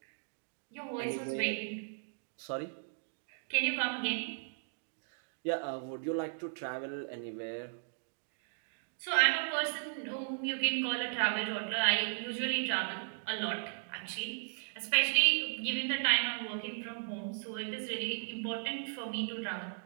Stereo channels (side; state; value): left; silent; digital silence